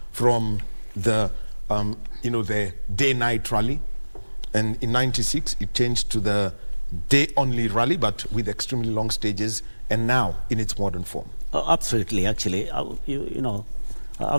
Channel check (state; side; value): inverted; both; correlation -1.00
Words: from the, the day-night rally, and in '96 it changed to the day-only rally, but with extremely long stages, and now in its modern form. Absolutely, actually,